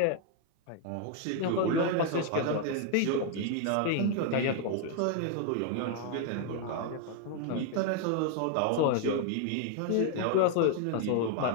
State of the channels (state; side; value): different; both; correlation 0.00